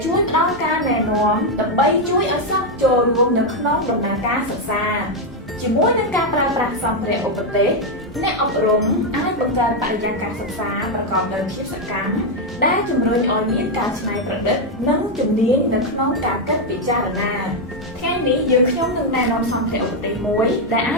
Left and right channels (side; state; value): both; normal; correlation 0.03